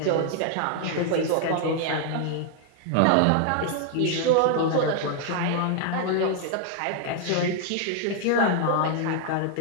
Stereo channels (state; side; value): different; both; correlation 0.00